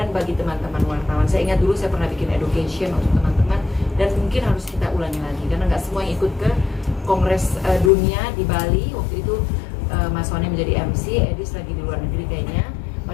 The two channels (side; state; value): right; drops out; at 7.9 s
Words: bagi teman-teman wartawan. Saya ingat dulu saya pernah bikin education untuk teman-teman, dan mungkin harus kita ulangi lagi karena nggak semua yang ikut ke Kongres Dunia di Bali. Waktu itu Mas Wani menjadi MC, Edis lagi di luar negeri kayaknya.